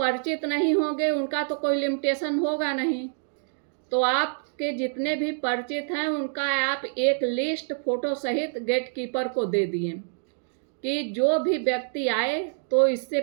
नहीं होंगे उनका तो कोई लिमिटेशन होगा नहीं। तो आपके जितने भी परिचित हैं उनका आप एक लिस्ट फोटो सहित गेटकीपर को दे दिए कि जो भी व्यक्ति आए तो इससे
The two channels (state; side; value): silent; left; digital silence